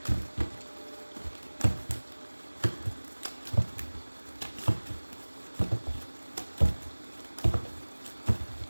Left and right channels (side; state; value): both; inverted; correlation -1.00